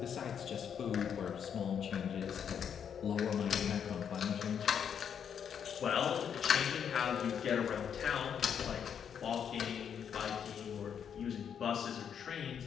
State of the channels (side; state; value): right; quieter; 7.9 dB